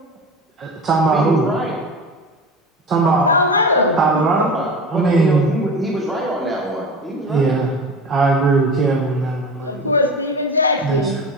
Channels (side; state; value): both; normal; correlation 0.31